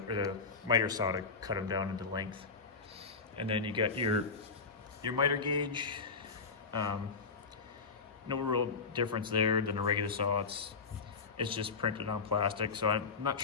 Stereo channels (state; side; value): quieter; right; 4.8 dB